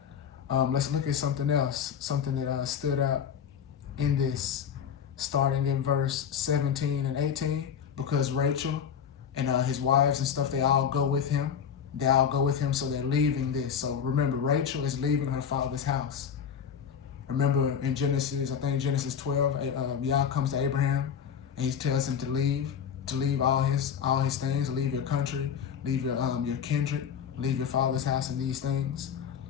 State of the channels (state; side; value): quieter; right; 7.9 dB